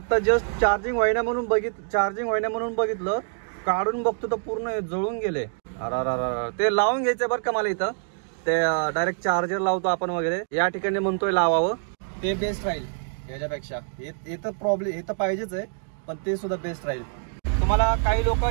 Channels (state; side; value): silent; left; digital silence